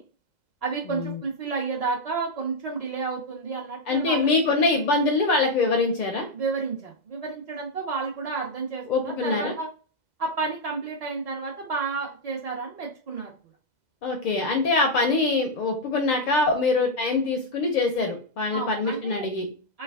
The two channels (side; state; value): right; late; 2.0 ms